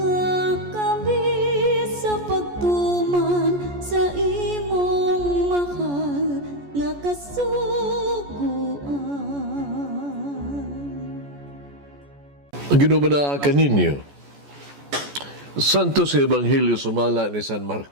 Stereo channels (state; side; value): late; left; 14 ms